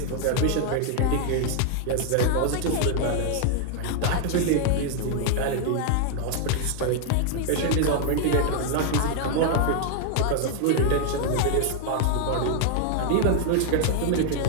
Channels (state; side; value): different; both; correlation 0.00